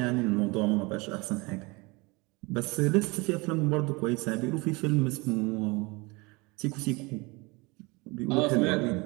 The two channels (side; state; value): left; quieter; 25.8 dB